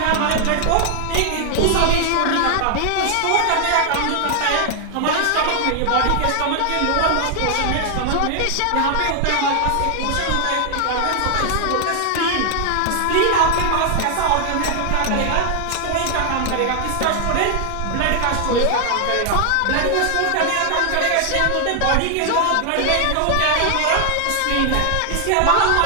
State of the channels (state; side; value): different; both; correlation 0.00